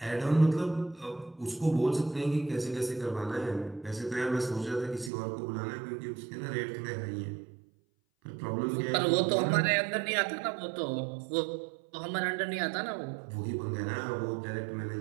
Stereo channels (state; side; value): drops out; left; at 5.1 s